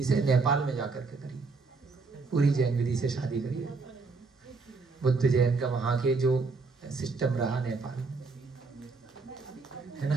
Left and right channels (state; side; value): quieter; left; 4.2 dB